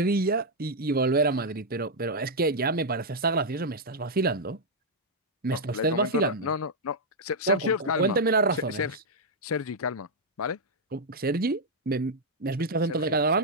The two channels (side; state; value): both; normal; correlation -0.03